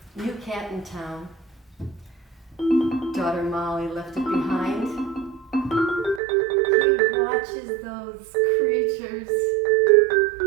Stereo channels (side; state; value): left; drops out; at 6.2 s